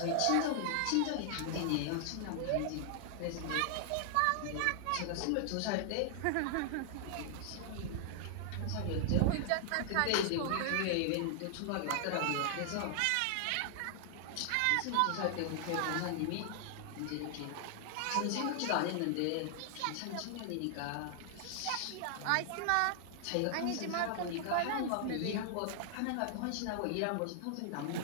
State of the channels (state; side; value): different; both; correlation 0.00